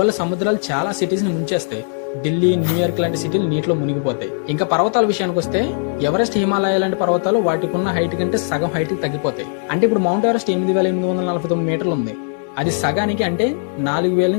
సముద్రాలు చాలా సిటీస్ ని ముంచేస్తాయి. ఢిల్లీ, న్యూయార్క్ లాంటి సిటీలు నీటిలో మునిగిపోతాయి. ఇంకా పర్వతాల విషయానికి వస్తే, ఎవరెస్ట్, హిమాలయ లాంటి పర్వతాలు వాటికి ఉన్న హైట్ కంటే సగం హైట్ కి తగ్గిపోతాయి. అంటే ఇప్పుడు మౌంట్ ఎవరెస్ట్ 8849 మీటర్లు ఉంది. అది సగానికి అంటే 4000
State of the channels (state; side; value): silent; right; 66 dB below the other